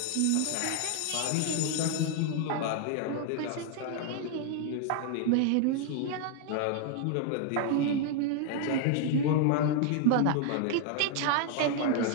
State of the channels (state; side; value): different; both; correlation 0.00